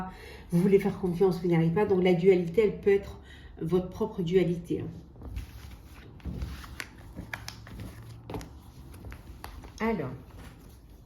Vous voulez faire confiance, vous n'y arrivez pas. Donc la dualité, elle peut être votre propre dualité. Hein. Alors,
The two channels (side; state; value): both; identical; correlation 1.00